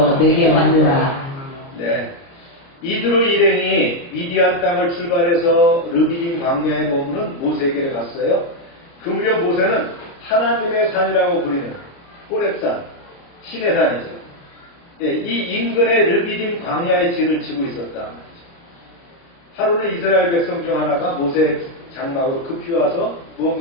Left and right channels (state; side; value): late; right; 30 ms